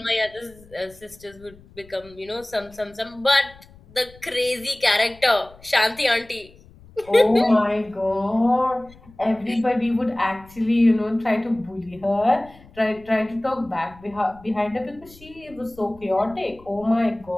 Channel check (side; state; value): left; noise; rumble, 24 dB below the sound